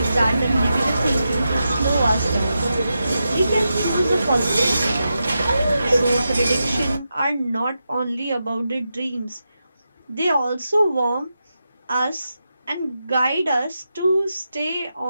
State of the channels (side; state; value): both; inverted; correlation -0.88